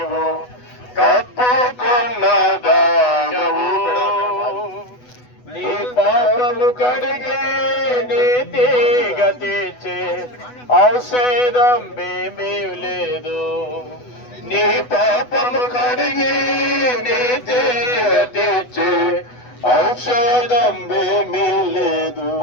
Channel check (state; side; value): late; right; 8.1 ms